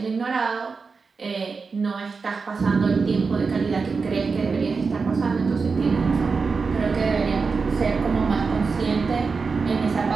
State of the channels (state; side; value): quieter; left; 4.8 dB